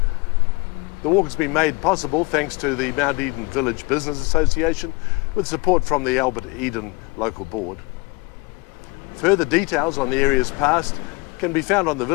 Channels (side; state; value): right; quieter; 27.0 dB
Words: The walk has been made possible thanks to the Mount Eden Village Business Association with support from the Albert Eden Local Board. Further details on the area's past can be found on the